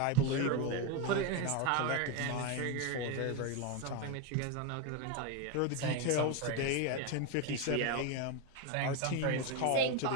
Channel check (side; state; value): both; different; correlation 0.02